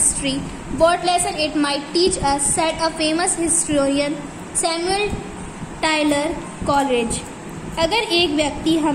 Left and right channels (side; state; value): both; identical; correlation 1.00